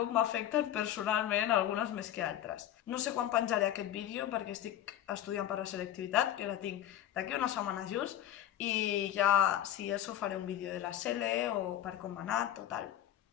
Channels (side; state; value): right; quieter; 11.9 dB